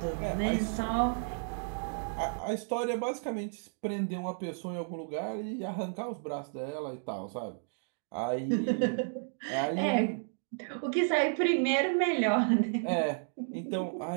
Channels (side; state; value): left; silent; digital silence